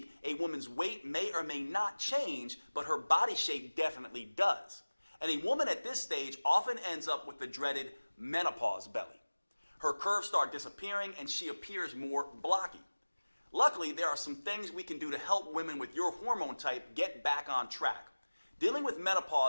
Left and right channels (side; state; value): both; inverted; correlation -1.00